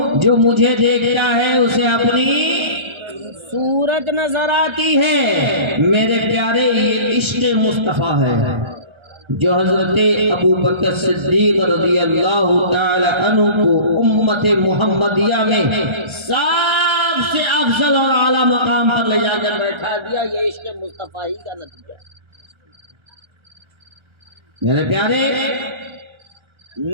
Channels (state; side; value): late; left; 1.3 ms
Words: جو مجھے دیکھتا ہے اسے اپنی صورت نظر آتی ہے۔ میرے پیارے، یہ عشق مصطفیٰ ہے جو حضرت ابو بکر صدیق رضی اللہ تعالی عنہ کو امت محمدیہ میں سب سے افضل اور اعلیٰ مقام پر لے جا کر بیٹھا دیا۔ یہ عشق مصطفیٰ ہی کا نتیجہ ہے۔ میرے پیارے،